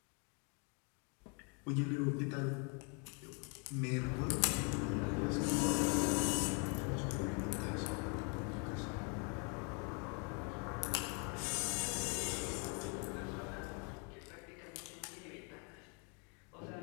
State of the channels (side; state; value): right; quieter; 35.7 dB